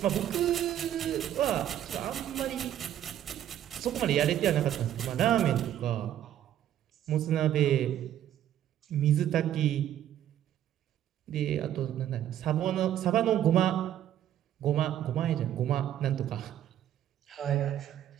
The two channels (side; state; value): left; quieter; 11.3 dB